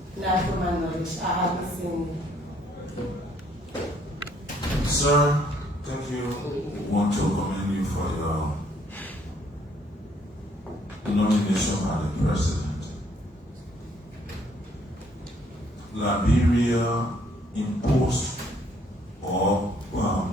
not to my knowledge. I haven't seen it. Sir, thank you. We want to commend you for your nomination by the President. Liberia imposed or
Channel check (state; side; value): normal; both; correlation 0.66